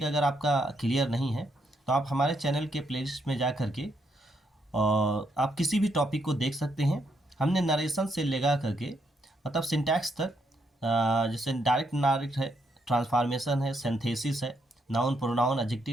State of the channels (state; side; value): normal; both; correlation 0.77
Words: अगर आपका क्लियर नहीं है तो आप हमारे चैनल के प्लेलिस्ट में जा करके और आप किसी भी टॉपिक को देख सकते हैं। हमने नरेशन से लगा करके मतलब सिंटैक्स तक, जैसे डायरेक्ट नारेट है, ट्रांसफॉर्मेशन है, सिंथेसिस है, नाउन प्रोनाउन